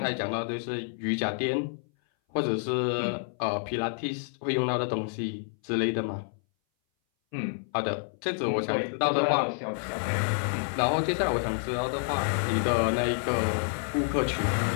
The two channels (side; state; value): right; silent; 58 dB below the other